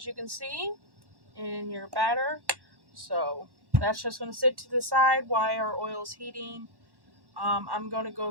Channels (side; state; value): left; late; 1.1 ms